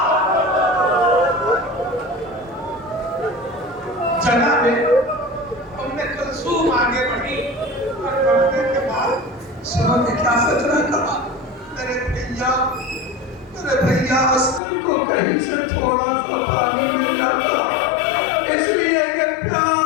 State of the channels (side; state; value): right; drops out; at 14.6 s